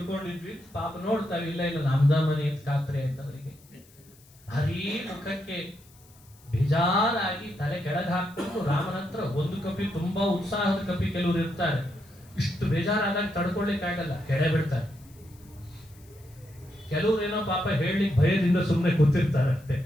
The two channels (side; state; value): left; noise; hiss, 27 dB below the sound